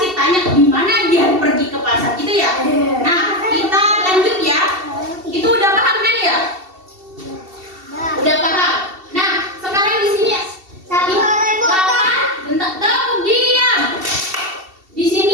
tanya di mana dia pergi ke pasar gitu ya. Nah, kita lanjut ya. Itu udah paham kan ya? Udah paham. Nah, sekarang di sini kapan? Bentar, tepuk diam. Di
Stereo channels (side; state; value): left; late; 2.7 ms